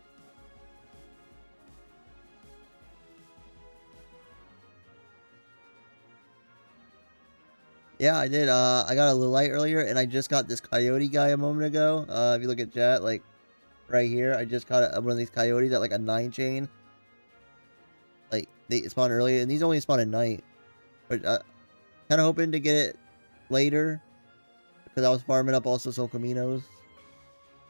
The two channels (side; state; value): both; inverted; correlation -1.00